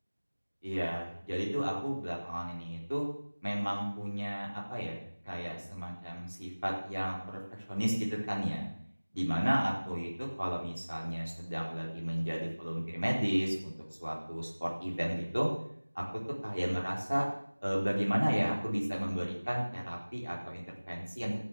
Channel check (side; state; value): both; inverted; correlation -1.00